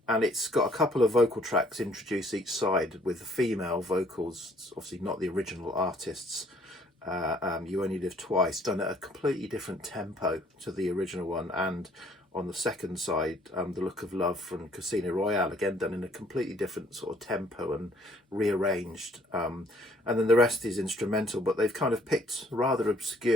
it's got a couple of vocal tracks introduced each side with female vocals. It's obviously not the original artists. You Only Live Twice, done at a completely different tempo to the original one. And on the second side, The Look of Love from Casino Royale, again done in a completely different sort of tempo and rearranged. And then the rest is instrumental, but they've kind of picked rather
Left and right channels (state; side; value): normal; both; correlation 0.62